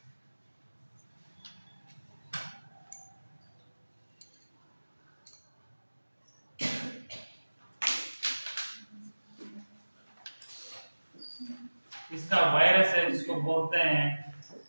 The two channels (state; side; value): inverted; both; correlation -1.00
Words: इसका वायरस है जिसको बोलते हैं